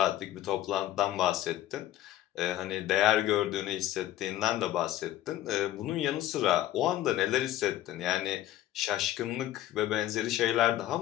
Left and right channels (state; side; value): quieter; right; 13.7 dB